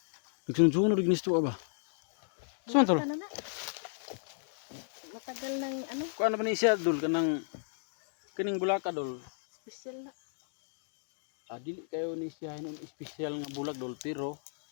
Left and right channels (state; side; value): silent; right; digital silence